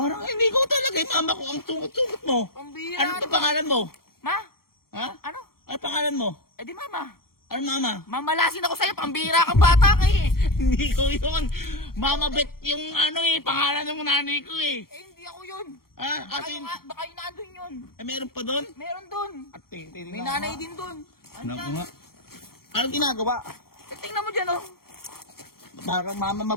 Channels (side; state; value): right; late; 0.94 ms